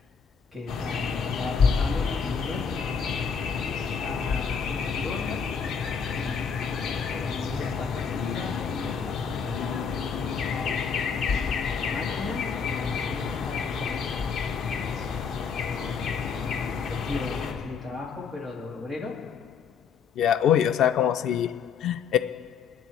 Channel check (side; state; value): right; quieter; 6.3 dB